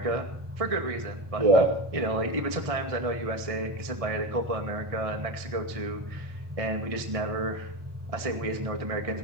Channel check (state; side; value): late; left; 1.6 ms